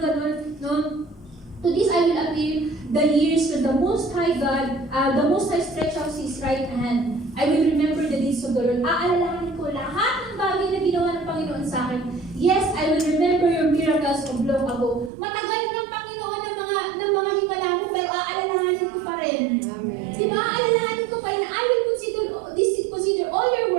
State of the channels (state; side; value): drops out; left; at 15.1 s